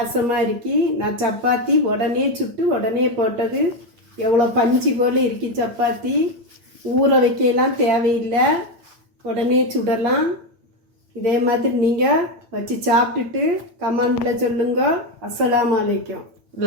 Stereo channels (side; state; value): left; late; 8.8 ms